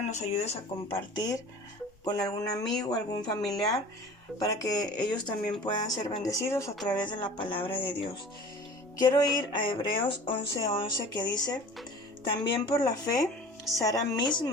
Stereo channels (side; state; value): both; normal; correlation 0.42